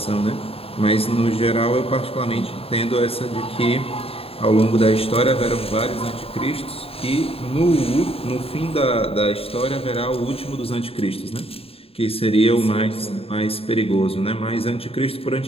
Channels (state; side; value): late; right; 0.28 ms